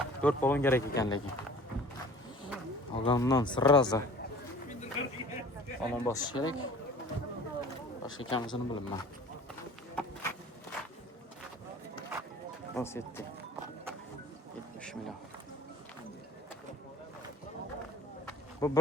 4 balon kerak ekan lekin. Olgandan sırası. Balon bosish kerak. Boshqa ekanmisini bilmayman. Lacetti 70 milyon. Bu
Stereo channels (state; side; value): normal; both; correlation 0.47